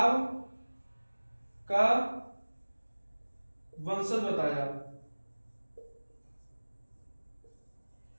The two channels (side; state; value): both; inverted; correlation -1.00